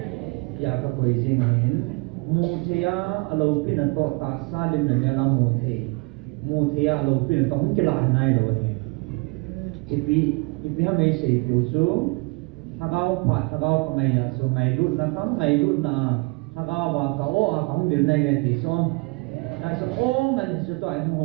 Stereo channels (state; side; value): quieter; left; 28.4 dB